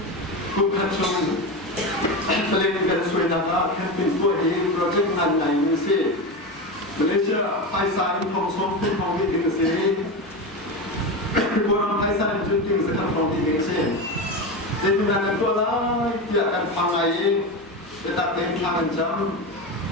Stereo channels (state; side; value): normal; both; correlation 0.20